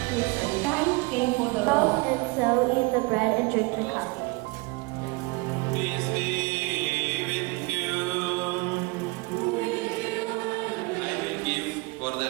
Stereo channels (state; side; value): quieter; left; 26.6 dB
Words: through 7. Christ came for the law. And so eat the bread and drink the cup. Peace be with you. I will give, for the